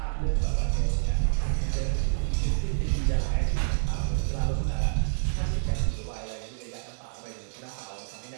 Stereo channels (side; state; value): left; silent; digital silence